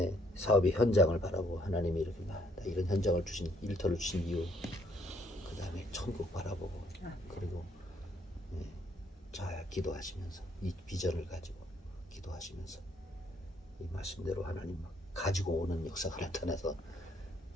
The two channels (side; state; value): both; normal; correlation 0.68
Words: 사업의 현장을 바라보고 하나님이 이렇게 이런 현장을 주신 일터를 주신 이유 그 다음에 천국 바라보고 그리고 잘 기도하시면서 이 비전을 가지고 기도하시면서 이 말씀대로 하나님 막 가지고 오는 역사가 나타나서